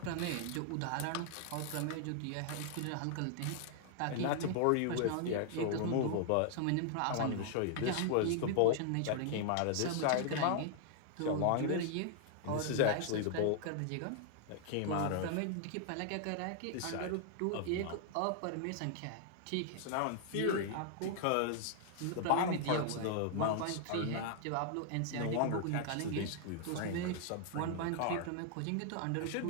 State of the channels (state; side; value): different; both; correlation -0.01